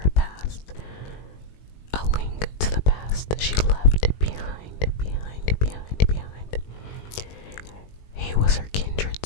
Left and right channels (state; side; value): late; right; 20 ms